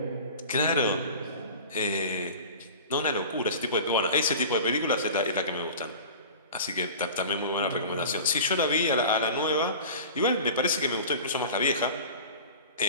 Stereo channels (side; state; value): both; inverted; correlation -0.37